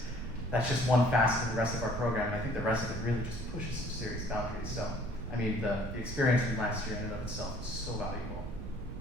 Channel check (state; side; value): noise; right; rumble, 8 dB below the sound